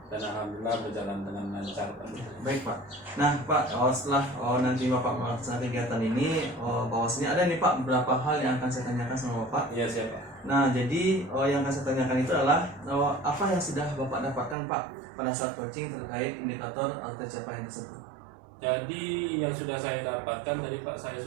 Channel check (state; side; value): drops out; left; at 14.6 s